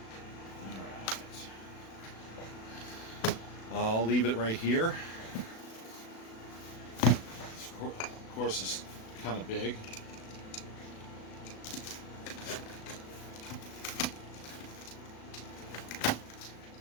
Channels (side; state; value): right; late; 36 ms